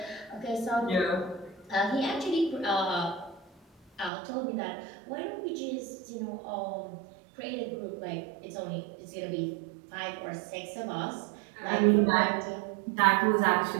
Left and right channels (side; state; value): left; drops out; at 4.1 s